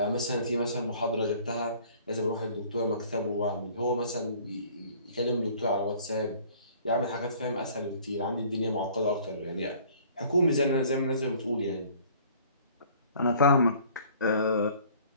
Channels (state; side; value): inverted; both; correlation -0.53